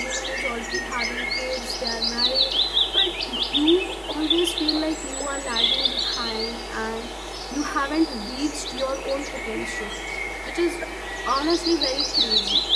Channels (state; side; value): identical; both; correlation 1.00